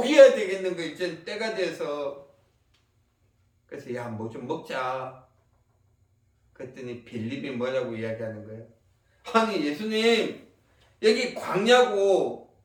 되겠는 거 이제 때가 돼서, 그래서 야 뭐 좀 먹자. 그랬더니 빌립이 뭐라고 이야기하는 거예요? 아니 예수님 여기 광야고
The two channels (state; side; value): identical; both; correlation 1.00